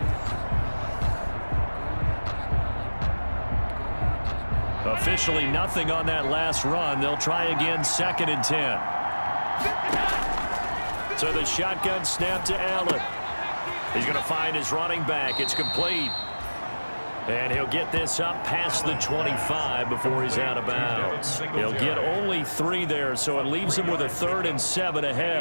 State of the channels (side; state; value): both; inverted; correlation -1.00